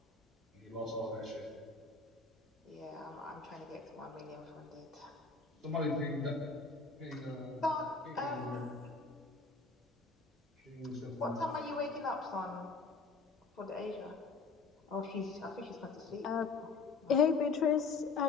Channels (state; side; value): quieter; right; 4.4 dB